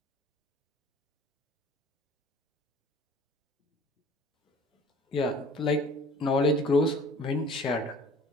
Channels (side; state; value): both; normal; correlation 0.49